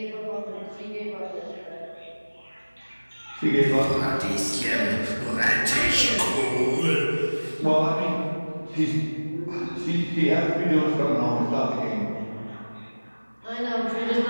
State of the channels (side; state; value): both; inverted; correlation -1.00